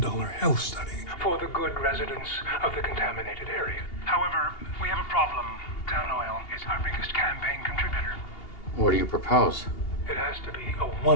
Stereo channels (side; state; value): right; late; 2.8 ms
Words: health study for the good residents of the contaminated area. However, we have a problem. Town Oil is our biggest campaign contributor. What do you propose? It has to be a